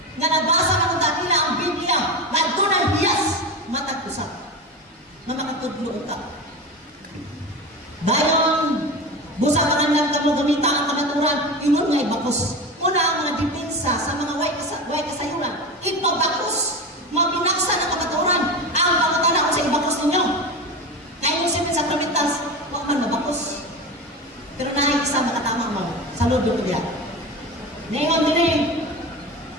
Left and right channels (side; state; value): both; normal; correlation 0.25